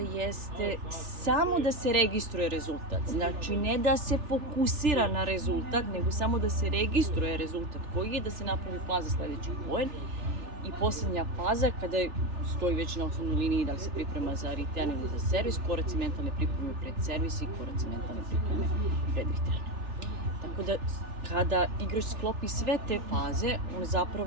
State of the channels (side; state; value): left; late; 3.4 ms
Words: samo da se registruje rezultat. Znači, ne da se fokusira na rezultat, nego samo da se registruje rezultat koji je, da se napravi plan za sledeći poen. I poslednja faza, kada stoji već na osnovnoj liniji da li se priprema za return ili za servis, koraci mentalne pripreme pred servis i koraci mentalne pripreme pred return. Tako da, kada igrač sklopi sve te faze, on